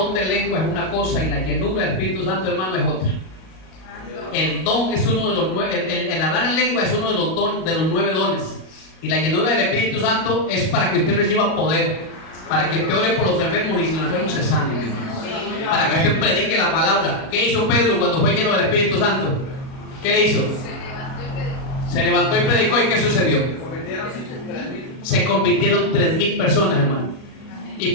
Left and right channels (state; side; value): late; right; 37 ms